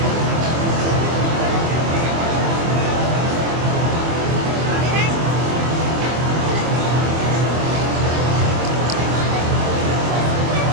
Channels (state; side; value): late; left; 24 ms